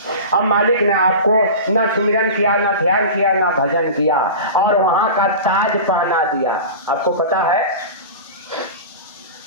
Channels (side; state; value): both; inverted; correlation -0.31